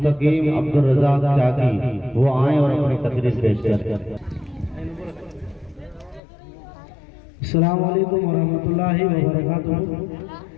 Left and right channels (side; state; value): right; drops out; at 6.2 s